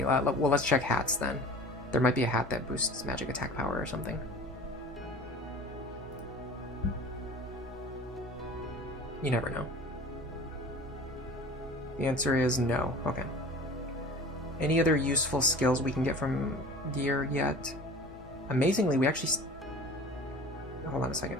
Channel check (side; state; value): both; normal; correlation 0.41